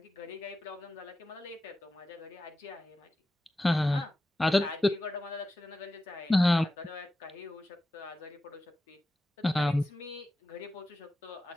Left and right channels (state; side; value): normal; both; correlation 0.92